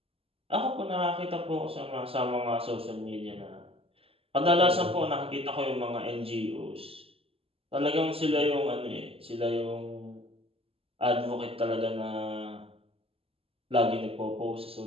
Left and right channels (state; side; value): late; left; 0.28 ms